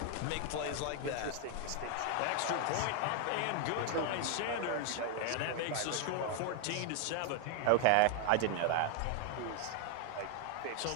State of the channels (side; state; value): both; different; correlation 0.00